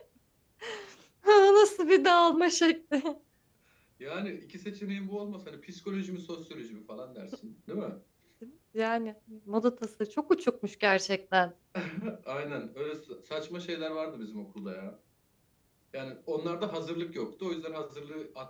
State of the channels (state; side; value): identical; both; correlation 1.00